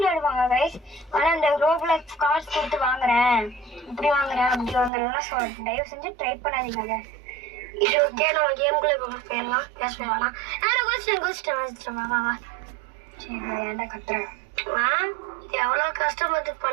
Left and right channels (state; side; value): drops out; left; at 4.9 s